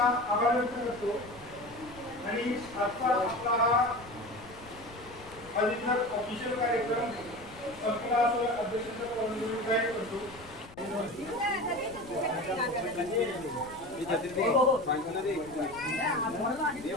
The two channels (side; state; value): left; noise; rumble, 20 dB below the sound